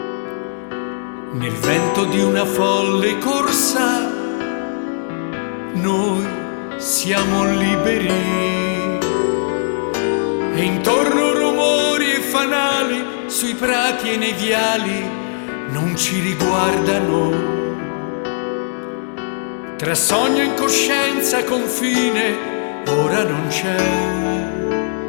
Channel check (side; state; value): right; silent; digital silence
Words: nel vento di una folle corsa. Noi siamo liberi e intorno rumori e fanali sui prati e nei viali non ci riguardano. Tra sogno e incoscienza confine ora non c'è.